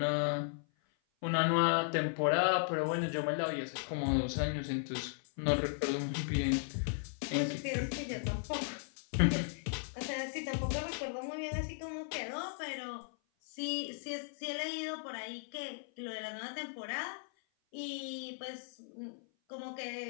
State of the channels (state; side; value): silent; right; 54 dB below the other